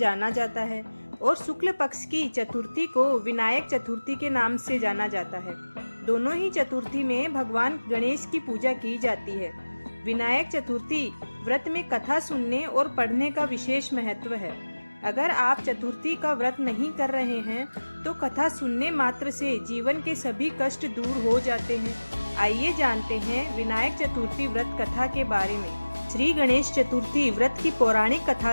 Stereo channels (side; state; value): both; inverted; correlation -1.00